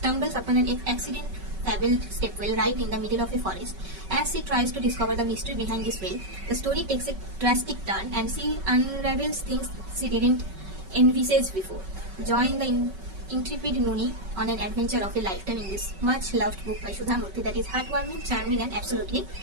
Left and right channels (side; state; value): left; late; 5.3 ms